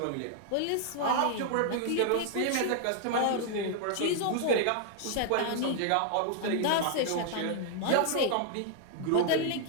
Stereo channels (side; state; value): both; different; correlation 0.00